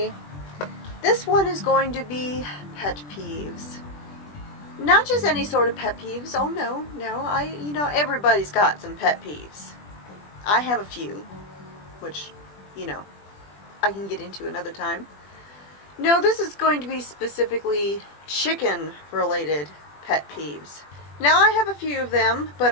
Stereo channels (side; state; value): right; late; 20 ms